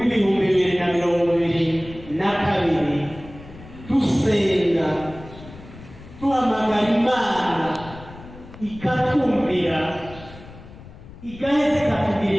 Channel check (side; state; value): left; noise; rumble, 18 dB below the sound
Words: dusenga duhamagara Imana ikatumvira, igaheza